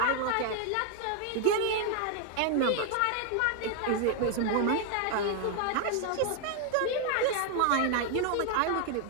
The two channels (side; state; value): both; different; correlation 0.00